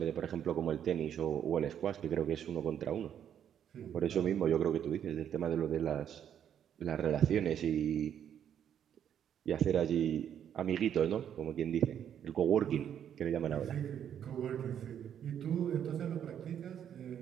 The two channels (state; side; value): quieter; left; 9.3 dB